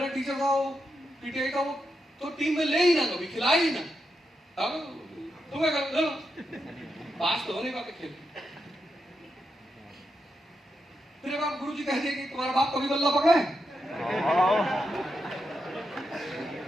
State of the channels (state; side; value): normal; both; correlation 0.85